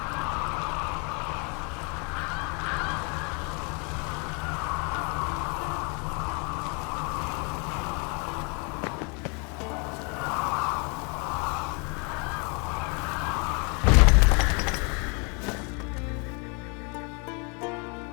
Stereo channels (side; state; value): right; quieter; 34.0 dB